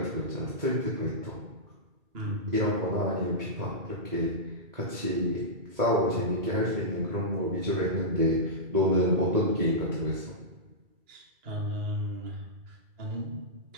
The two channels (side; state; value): left; late; 2.3 ms